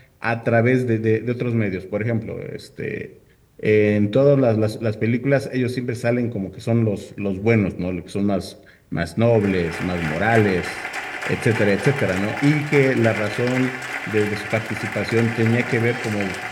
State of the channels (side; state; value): both; identical; correlation 1.00